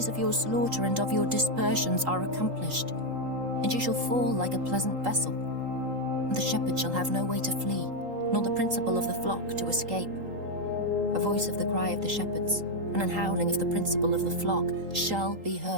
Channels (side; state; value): left; late; 3.8 ms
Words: of your slaughter and of your dispersions are accomplished, and ye shall fall like a pleasant vessel. And the shepherd shall have no way to flee, nor the principal of the flock to escape. A voice of the cry of the shepherds, and an howling of the principal of the flock shall be